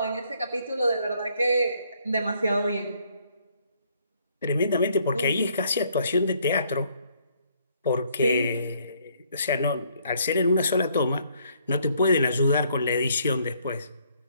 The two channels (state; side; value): inverted; both; correlation -0.67